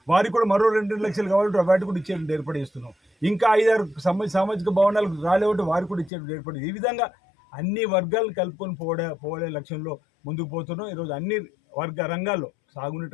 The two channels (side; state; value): right; drops out; at 6.1 s